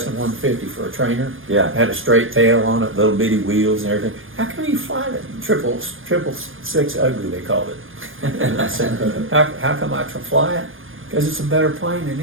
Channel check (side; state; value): left; late; 0.59 ms